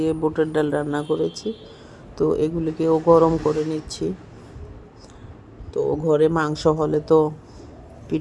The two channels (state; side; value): identical; both; correlation 1.00